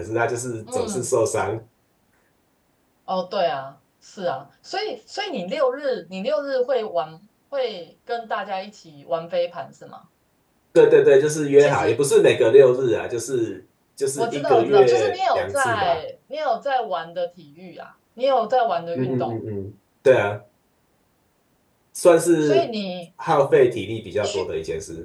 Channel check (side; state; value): both; identical; correlation 1.00